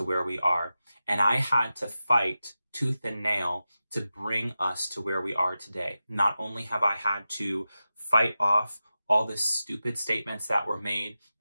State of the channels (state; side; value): inverted; both; correlation -0.92